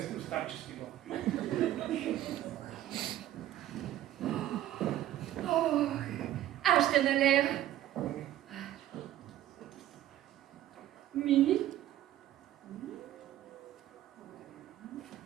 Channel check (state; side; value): quieter; left; 13.1 dB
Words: в старчески дом. Ох, аз ще налея. Мини?